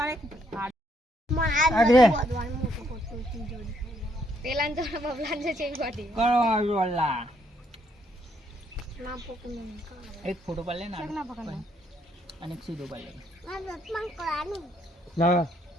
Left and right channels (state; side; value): normal; both; correlation 0.71